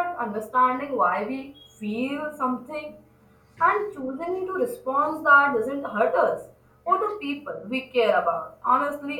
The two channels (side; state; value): both; identical; correlation 1.00